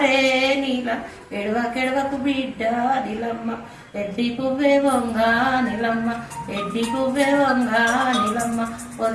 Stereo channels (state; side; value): identical; both; correlation 1.00